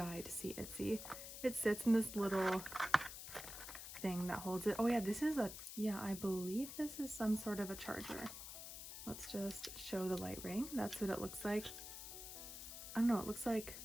to see Itzy. It sits in this little thing that holds it. Oh yeah, I believe this is some sort of a charger. Let's just show the light ring. That's what it looks like. I don't know, it looks like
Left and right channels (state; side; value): noise; left; hiss, 9 dB below the sound